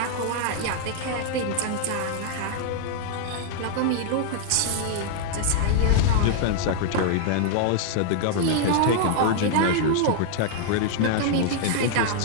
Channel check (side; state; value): both; different; correlation 0.00